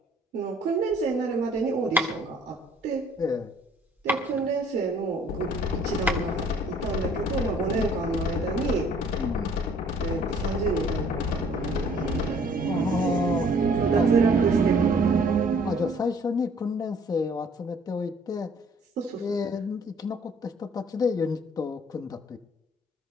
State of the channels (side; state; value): both; normal; correlation 0.57